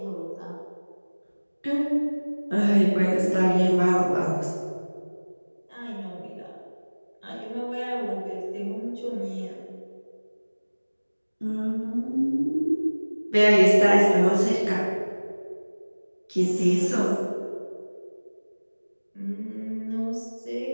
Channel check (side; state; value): both; inverted; correlation -1.00